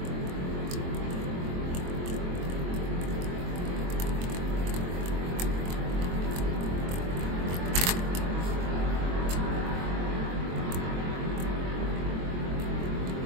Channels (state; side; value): late; left; 23 ms